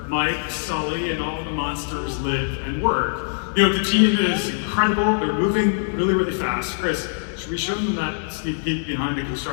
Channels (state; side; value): silent; right; digital silence